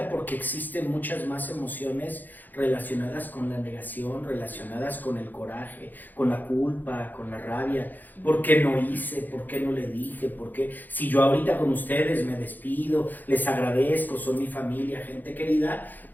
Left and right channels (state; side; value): late; right; 0.086 ms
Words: porque existen muchas más emociones relacionadas con la negación, relacionadas con el coraje, con la culpa, con la rabia. ¿Por qué no hice? ¿Por qué no le dije? ¿Por qué? Si yo ahorita con ustedes me despido, les agradezco, son mi familia, gente querida,